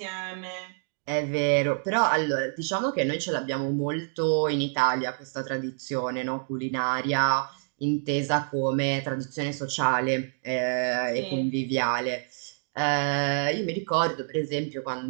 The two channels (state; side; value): silent; left; digital silence